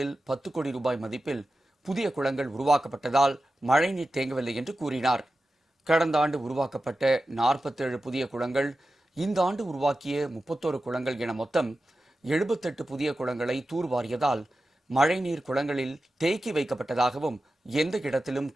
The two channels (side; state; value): both; normal; correlation 0.93